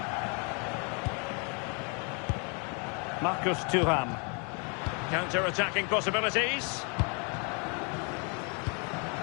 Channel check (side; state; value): right; quieter; 35.8 dB